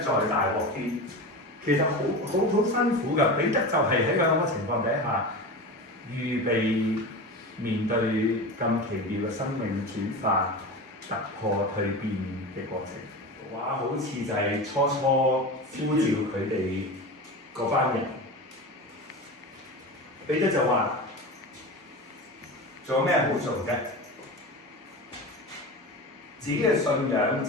大鑊啲？其實好辛苦㗎。彼得就係喺咁嘅情況底下，預備面對咁奇妙嘅生命轉化、突破、蛻變嘅過程。哇！好似就係初呼召佢哋嗰班人，彼得就話：做咩好做啫？自己嘅信仰、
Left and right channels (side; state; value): both; normal; correlation 0.27